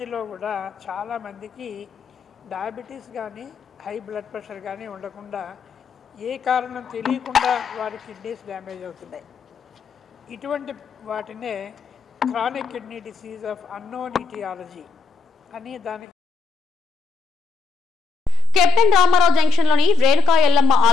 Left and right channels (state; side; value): quieter; right; 3.4 dB